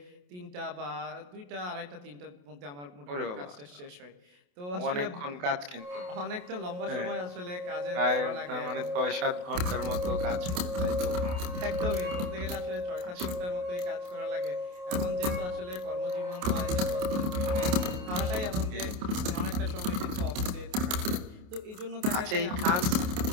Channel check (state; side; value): late; left; 28 ms